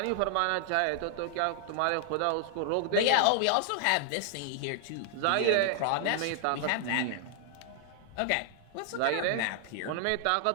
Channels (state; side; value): different; both; correlation 0.00